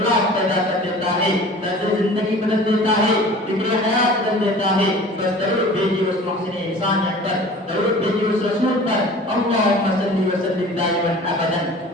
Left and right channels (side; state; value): both; normal; correlation 0.43